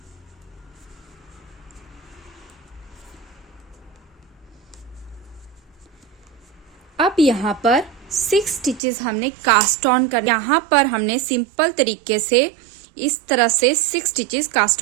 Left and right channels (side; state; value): left; drops out; at 8.8 s